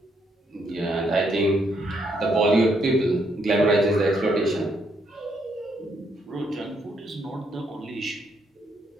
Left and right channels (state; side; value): normal; both; correlation 0.74